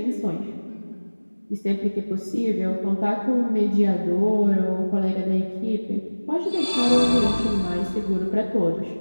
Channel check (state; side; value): inverted; both; correlation -1.00